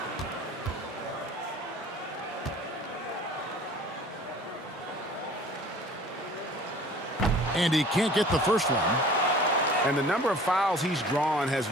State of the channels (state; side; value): normal; both; correlation 0.47